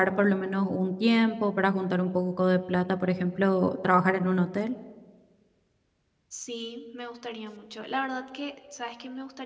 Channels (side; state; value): both; identical; correlation 1.00